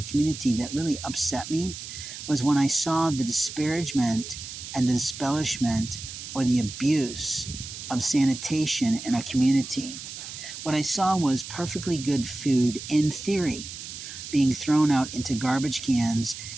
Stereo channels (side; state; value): right; noise; hiss, 10 dB below the sound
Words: community that really upset me was when I saw the disparagement and the disbellishment or the abuse of sanitation in a community. What I saw was perfectly good food, in theory, being thrown out into garbage cans